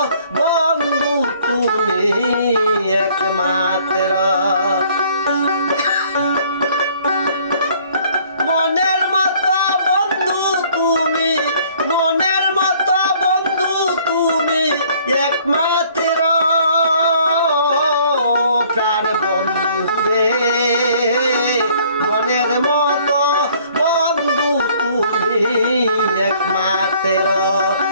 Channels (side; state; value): both; inverted; correlation -0.58